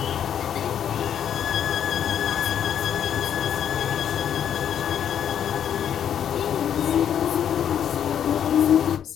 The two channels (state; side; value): quieter; right; 9.2 dB